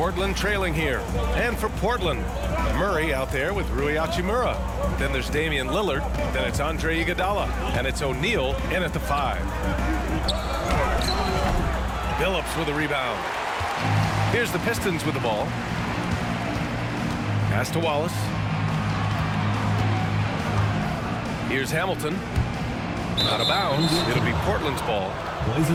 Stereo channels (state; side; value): identical; both; correlation 1.00